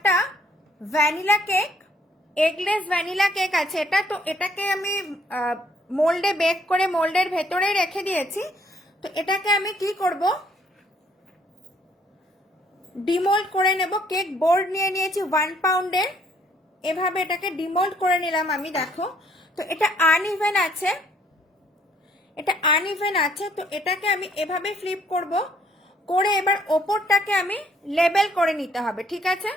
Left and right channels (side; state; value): both; normal; correlation 0.65